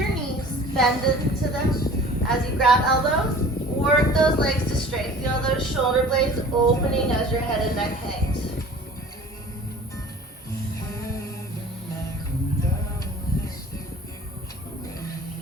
knees, bend into them. As you grab elbows, work those legs to straight. Feel those shoulder blades opening as your head and neck hangs.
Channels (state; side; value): normal; both; correlation 0.45